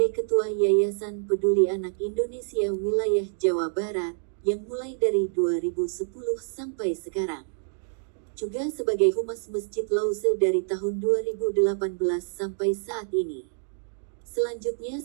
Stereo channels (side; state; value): left; silent; digital silence